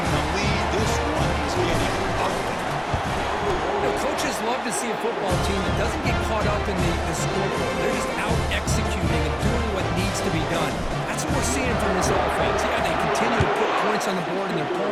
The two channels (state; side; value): identical; both; correlation 1.00